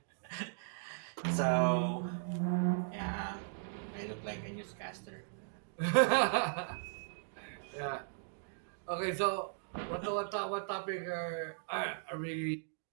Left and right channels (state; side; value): silent; left; digital silence